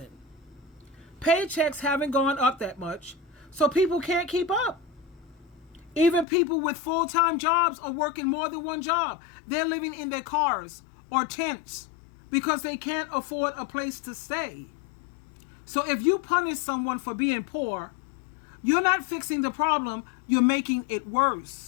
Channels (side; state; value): right; drops out; at 6.2 s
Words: Paychecks haven't gone up that much, so people can't keep up. Even people with full-time jobs are working more than one job. They're living in their cars or tents because they can't afford a place to stay. So if you punish someone for being poor, you're not fixing the problem, you're making it